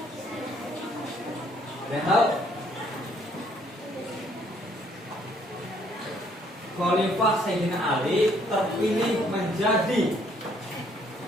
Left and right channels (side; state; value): both; normal; correlation 0.65